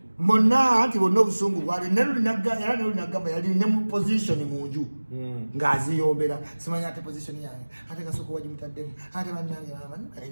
monna nti bonna obusungu bwali nelunagamba yali ne mu position mu nju ng'aziyombera simanya ate position yange ate Kasuku wagimutaddemu ate bannange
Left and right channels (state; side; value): inverted; both; correlation -1.00